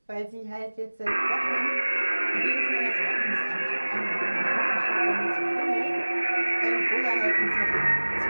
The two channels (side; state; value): both; inverted; correlation -1.00